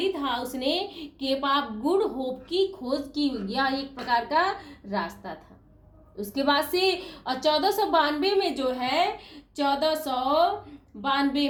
था, उसने केप ऑफ गुड होप की खोज की। यह एक प्रकार का रास्ता था। उसके बाद से और 1492 में जो है,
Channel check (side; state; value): both; identical; correlation 1.00